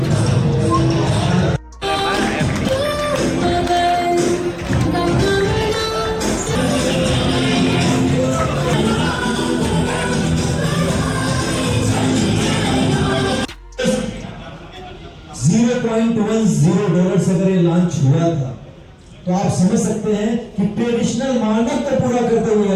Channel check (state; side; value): identical; both; correlation 1.00